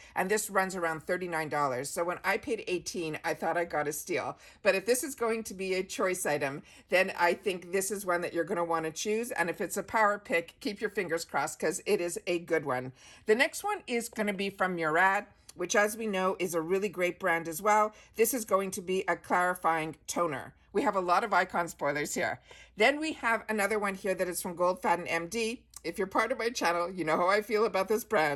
and this runs around $39. So when I paid $18, I thought I got a steal. But if this is going to be a choice item, then I think this is one that you're going to want to choose. And if it's a power pick, keep your fingers crossed, because it is a good one. The next one is going to be from Murad, which, as we know, is a really great brand as well. This is going to be a clarifying toner. We have a lot of Icon spoilers here. Then we have another one here that is from Goldfaden MD. If you're part of my channel, you know how I feel about this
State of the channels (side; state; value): both; identical; correlation 1.00